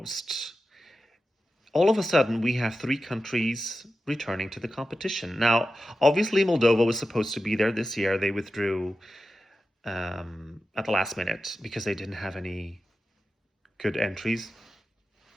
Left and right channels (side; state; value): both; normal; correlation 0.92